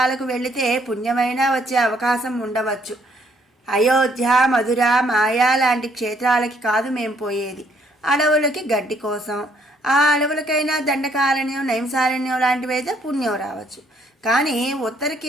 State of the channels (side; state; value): both; normal; correlation 0.67